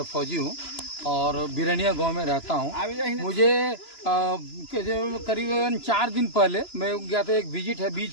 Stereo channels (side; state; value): right; late; 3.0 ms